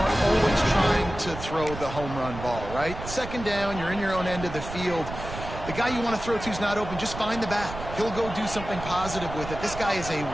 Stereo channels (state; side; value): noise; right; rumble, 10 dB below the sound